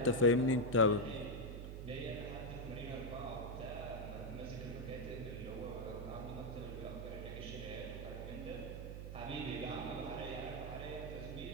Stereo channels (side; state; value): right; noise; hum, 7 dB below the sound